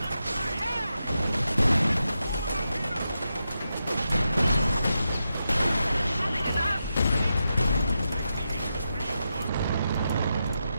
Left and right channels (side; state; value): both; inverted; correlation -0.87